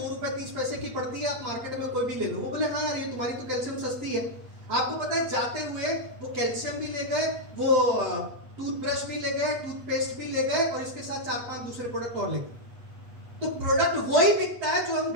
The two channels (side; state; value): left; late; 8.2 ms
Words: रुपए 30 पैसे की पड़ती है, आप मार्केट में कोई भी ले लो। वो बोले हाँ यार ये तुम्हारी तो कैल्शियम सस्ती है। आपको पता है जाते हुए वो कैल्शियम भी ले गए, वो टूथब्रश भी ले गए, टूथपेस्ट भी ले गए, और इसके साथ 4-5 दूसरे प्रोडक्ट और ले गए। तो प्रोडक्ट वही बिकता है जो हम